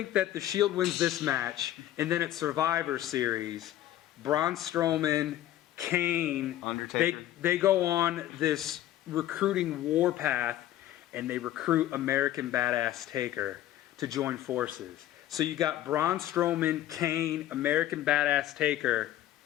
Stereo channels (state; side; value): quieter; right; 13.2 dB